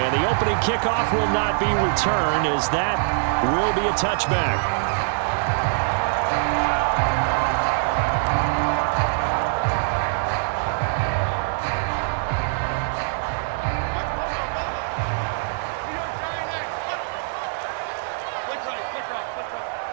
the opening kickoff will not be returned, as that will be a touchback.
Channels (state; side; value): silent; left; digital silence